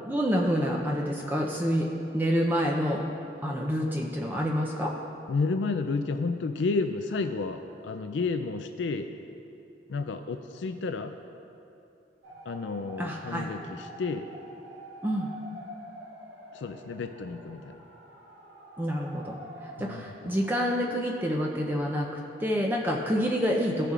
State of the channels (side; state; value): both; normal; correlation 0.68